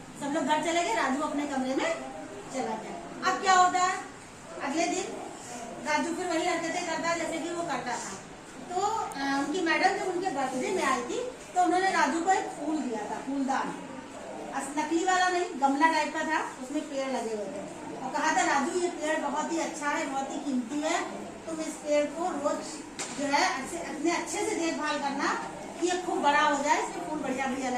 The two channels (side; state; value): both; identical; correlation 1.00